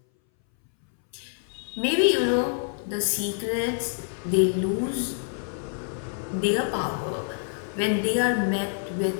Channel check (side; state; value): right; silent; 60 dB below the other